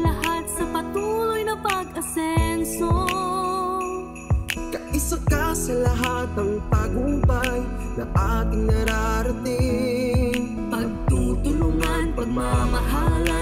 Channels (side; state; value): both; identical; correlation 1.00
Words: lahat sa patuloy na pag-asenso. Kaisa ka sa lahat ng tagumpay na ating nararating. Pagtutulungan,